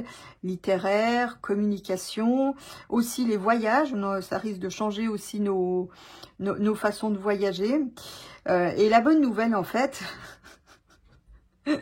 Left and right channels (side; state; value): both; identical; correlation 1.00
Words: littéraire, communication. Aussi les voyages, ça risque de changer aussi nos façons de voyager. Et la bonne nouvelle, en fait,